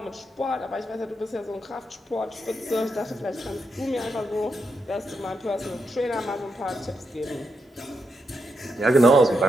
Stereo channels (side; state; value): both; normal; correlation 0.83